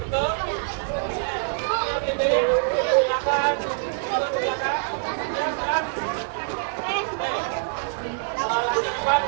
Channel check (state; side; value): silent; left; digital silence